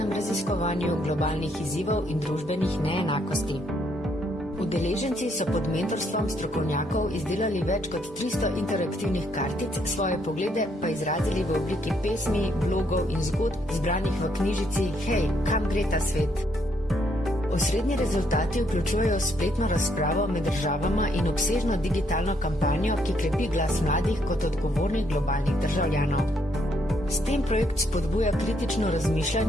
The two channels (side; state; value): both; normal; correlation 0.72